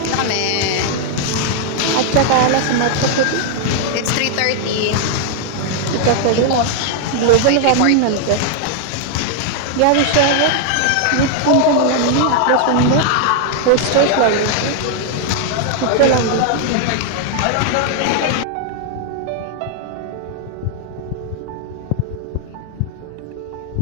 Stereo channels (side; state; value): both; different; correlation 0.00